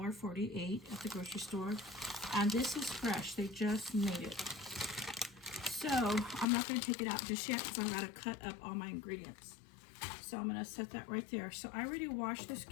at the grocery store and this is fresh, they just made it. So I'm not going to take it out just yet because I've got to cut up all my ingredients. So I'm going to set that right there. So I already washed this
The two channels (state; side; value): drops out; right; at 6.5 s